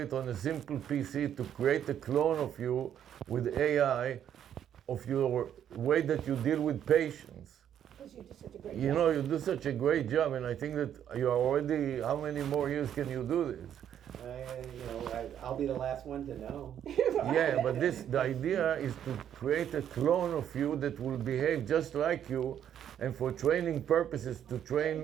on a simple PC to create a clone of you with AI, of your way that you deal with patients. Because you do such a great You job. know, you do such a great job, and I think that you are already, how many more years can you do this? I'll be the last one to know. Yeah, but the idea is to create a clone of you that will behave just like you, and for training purposes to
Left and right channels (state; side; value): quieter; left; 9.7 dB